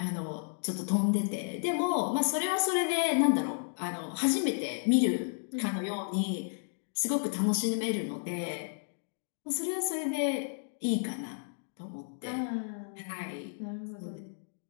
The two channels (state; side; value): silent; right; digital silence